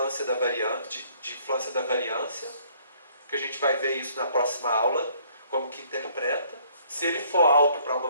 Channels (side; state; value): both; inverted; correlation -0.61